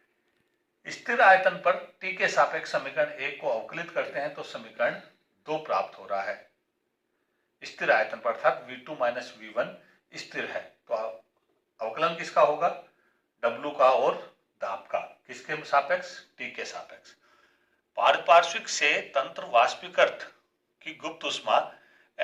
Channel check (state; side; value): identical; both; correlation 1.00